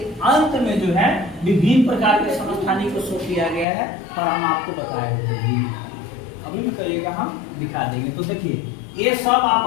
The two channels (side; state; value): right; drops out; at 3.7 s